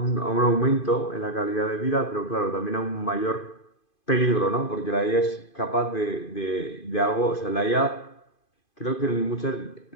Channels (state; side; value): late; right; 2.5 ms